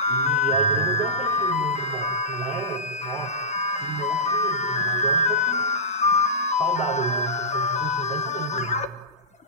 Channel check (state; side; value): normal; both; correlation -0.19